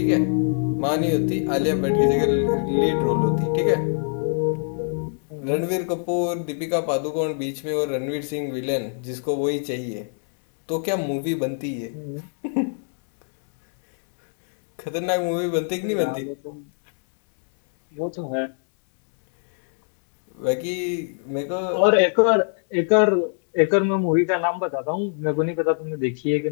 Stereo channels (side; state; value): right; silent; digital silence